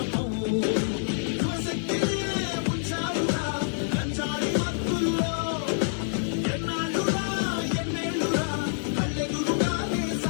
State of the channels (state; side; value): silent; right; digital silence